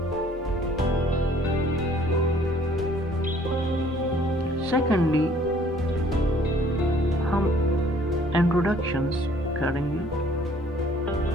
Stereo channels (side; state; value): both; normal; correlation 0.58